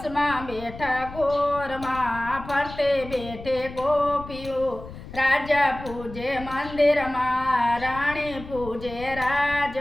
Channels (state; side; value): noise; left; rumble, 14 dB below the sound